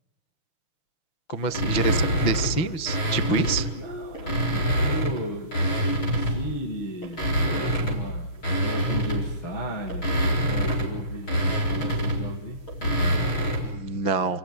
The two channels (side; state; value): right; late; 6.4 ms